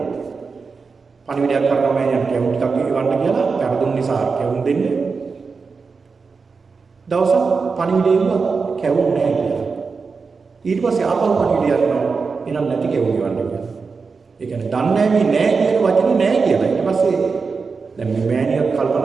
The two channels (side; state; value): left; quieter; 4.8 dB